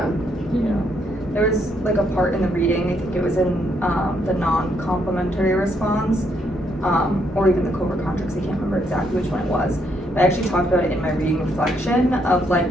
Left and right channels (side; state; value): both; normal; correlation 0.74